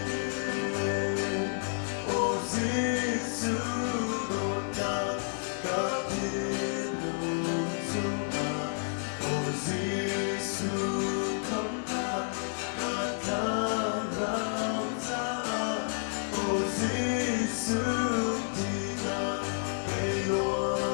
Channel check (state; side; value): silent; right; digital silence